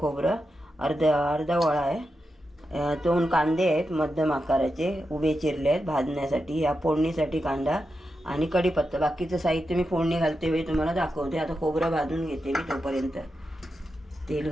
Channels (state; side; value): normal; both; correlation 0.88